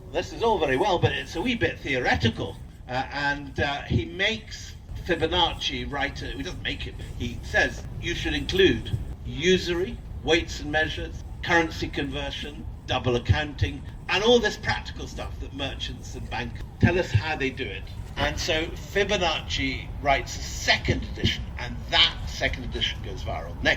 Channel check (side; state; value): both; identical; correlation 1.00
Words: this is all very well, but it's a wee bit theoretical. And he makes Fibonacci write, he doesn't make it, he says you should include usury, weights and measures, currency conversion, double accounting, and all this practical stuff that merchants and bankers tell us how they do it. And so Fibonacci writes a second edition, and that second edition goes viral.